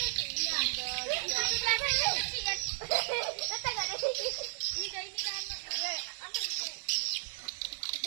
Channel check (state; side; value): silent; left; 55 dB below the other